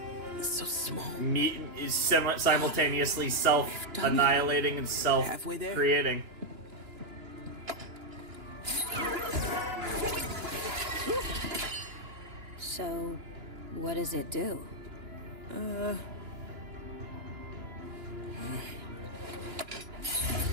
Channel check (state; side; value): late; left; 2.9 ms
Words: It's so small. Meat is simultaneously self-annihilating and self-creating. So, what does it do?